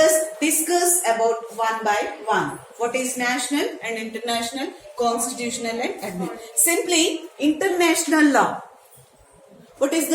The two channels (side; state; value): both; identical; correlation 1.00